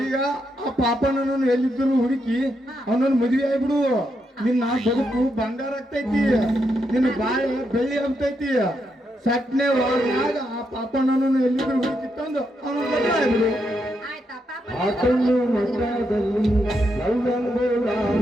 ಈಗ ಆ ಪಾಪನನ್ನು ಎಲ್ಲಿದ್ದರೂ ಹುಡುಕಿ ಅವನನ್ನು ಮದುವೆ ಆಗ್ಬಿಡು. ನಿನ್ನ ಬದುಕು ಬಂಗಾರ ಆಗ್ತೈತಿ, ನಿನ್ನ ಬಾಳೆ ಬೆಳ್ಳಿ ಆಗ್ತೈತಿ. ಸಟ್ನೆ ಒಳಗ ಆ ಪಾಪನನ್ನು ಎಲ್ಲಿದ್ದರೂ ಹುಡುಕಿ ತಂದು ಅವನ ಮದುವೆ ಆಗ್ಬಿಡು. ಆಯ್ತಾ ಪಾಪ? ಆತನು ಮಠದಲ್ಲಿ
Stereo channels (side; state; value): both; normal; correlation 0.81